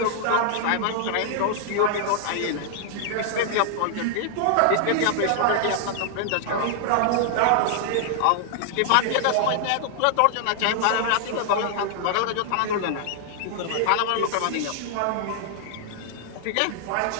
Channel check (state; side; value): different; both; correlation -0.01